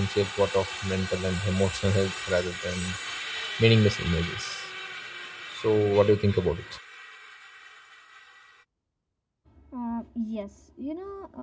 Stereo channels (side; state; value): both; identical; correlation 1.00